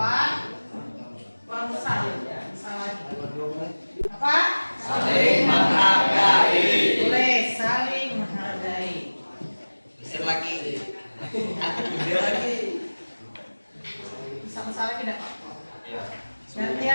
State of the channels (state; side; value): inverted; both; correlation -1.00